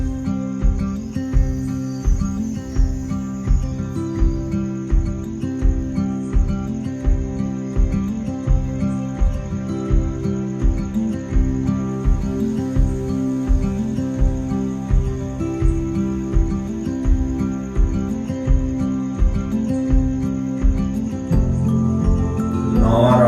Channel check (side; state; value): both; identical; correlation 1.00